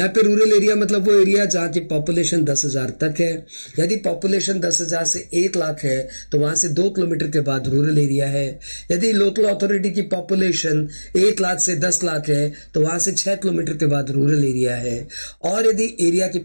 पे rural area मतलब वो area जहाँ की population 10,000 तक है। यदि पॉपुलेशन 10,000 से 1 लाख है तो वहां से 2 किलोमीटर के बाद रूरल एरिया है। यदि लोकल अथॉरिटी की पॉपुलेशन 1 लाख से 10 लाख है तो वहां से 6 किलोमीटर के बाद रूरल एरिया है। और यदि एरिया की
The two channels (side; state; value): both; inverted; correlation -1.00